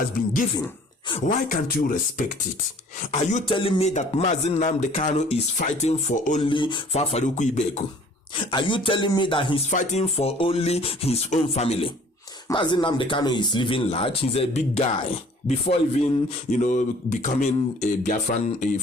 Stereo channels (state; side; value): normal; both; correlation 0.53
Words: been given. Why can't you respect it? Are you telling me that Mazin Nnamdi Kanu is fighting for only Fafaruku Ibeku? Are you telling me that he's fighting for only his own family? Mazin Nnamdi Kanu is living large. He's a big guy. Before even, becoming a Biafran